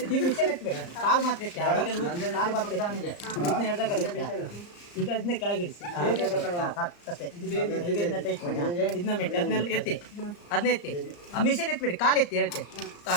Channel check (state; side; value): late; right; 34 ms